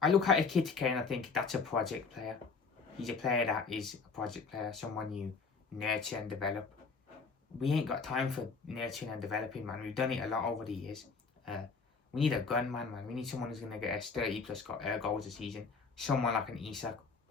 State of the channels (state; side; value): quieter; right; 4.9 dB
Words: I look at Ekitike and I think that's a project player. He's a player that is a project player, someone you nurture and develop. We ain't got time for nurturing and developing, man. We've done it a lot over the years. We need a gunman, man. We need someone who's going to get us 30 plus goals a season. Someone like an Isak